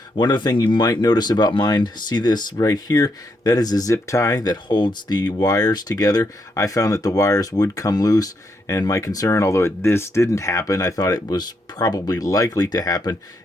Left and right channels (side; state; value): both; normal; correlation 0.79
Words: One other thing you might notice about mine, see this right here? That is a zip tie that holds the wires together. I found that the wires would come loose, and my concern, although this didn't happen, I thought it was probably likely to happen,